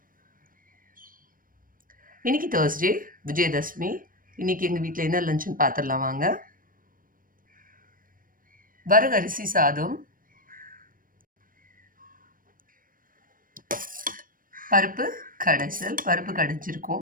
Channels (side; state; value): left; late; 0.40 ms